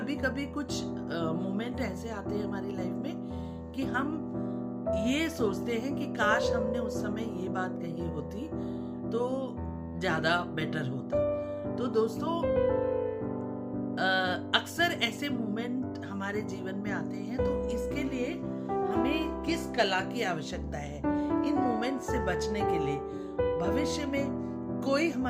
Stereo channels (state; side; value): identical; both; correlation 1.00